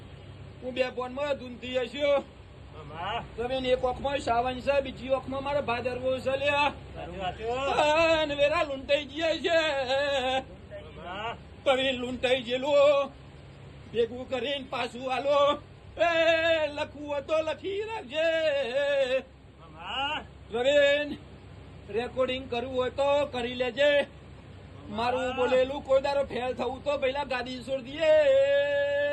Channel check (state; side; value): identical; both; correlation 1.00